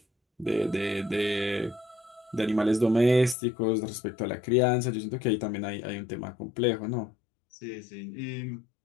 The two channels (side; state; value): right; drops out; at 3.4 s